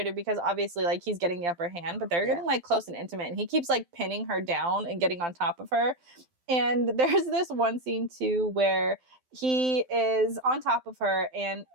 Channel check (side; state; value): left; late; 12 ms